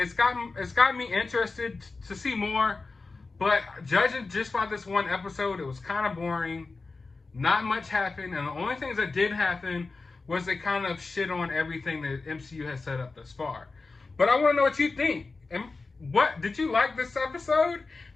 got me interested to see more. But judging just by this one episode, it was kind of boring. Not much happened. And the only things that did happen was they kind of shit on everything that MCU has set up thus far. But I want to know what you think. And what did you like this episode?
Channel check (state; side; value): quieter; right; 3.9 dB